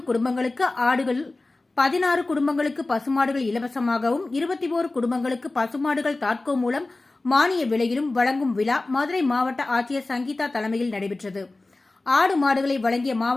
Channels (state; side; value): quieter; right; 3.1 dB